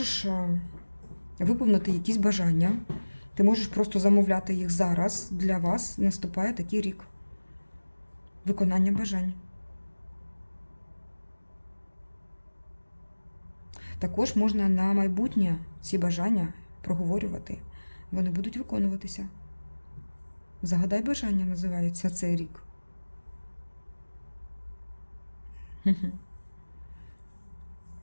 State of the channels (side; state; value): both; inverted; correlation -1.00